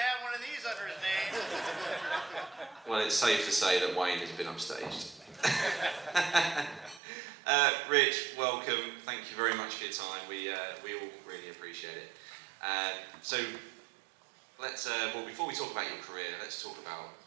one of these under his name. Well, it's safe to say that Wayne has been upstaged. Rich, welcome. Thank you very much for your time. We all really appreciate it. So let's well, before we talk about your career, let's talk about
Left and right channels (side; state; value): left; drops out; at 7.0 s